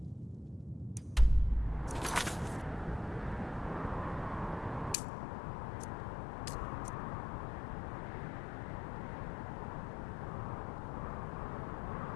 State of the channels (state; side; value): drops out; right; at 5.0 s